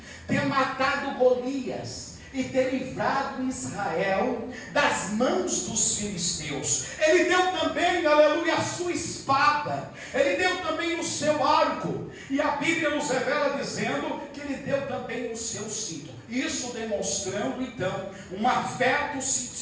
ter matado Golias e ter livrado Israel das mãos dos filisteus. Ele deu também, aleluia, a sua espada, ele deu também o seu arco, e a Bíblia nos revela dizendo que ele deu também o seu cinto. Isso demonstrando então um afeto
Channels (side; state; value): both; identical; correlation 1.00